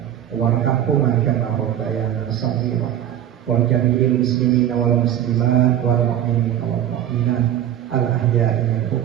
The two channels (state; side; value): quieter; left; 11.1 dB